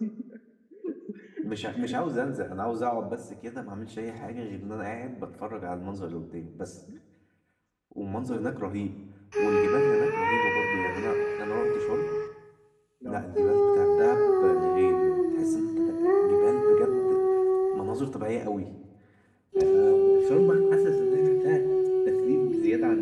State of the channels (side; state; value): both; identical; correlation 1.00